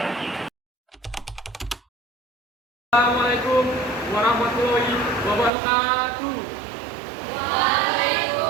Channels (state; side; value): drops out; left; at 5.5 s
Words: Assalamualaikum warahmatullahi wabarakatuh.